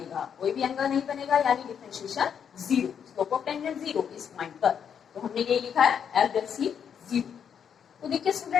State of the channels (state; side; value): quieter; right; 7.8 dB